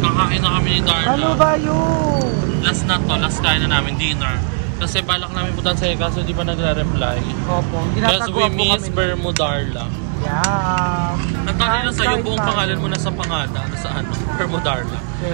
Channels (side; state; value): left; silent; digital silence